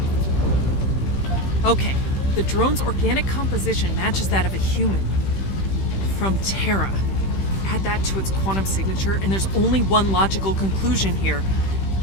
Okay, the drone's organic composition matches that of a human. From Terra. Add that to its quantum signature, and there's only one logical conclusion here.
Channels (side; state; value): right; late; 15 ms